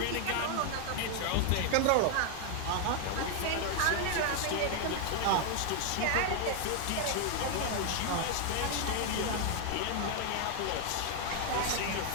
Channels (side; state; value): both; different; correlation 0.00